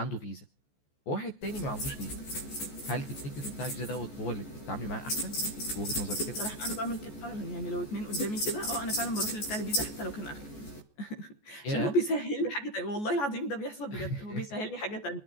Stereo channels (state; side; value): late; right; 14 ms